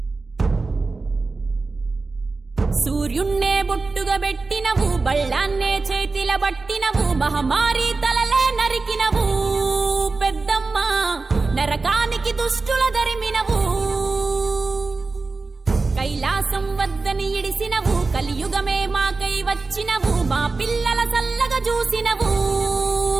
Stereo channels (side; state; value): left; quieter; 3.9 dB